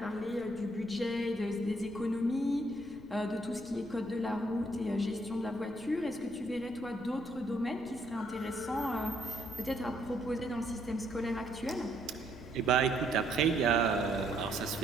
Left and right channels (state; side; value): noise; left; rumble, 19 dB below the sound